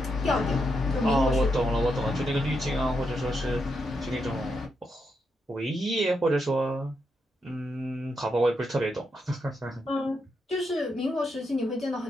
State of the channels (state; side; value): normal; both; correlation 0.82